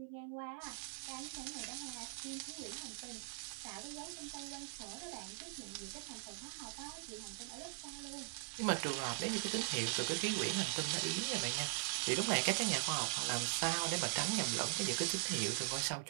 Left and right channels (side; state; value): left; silent; 50 dB below the other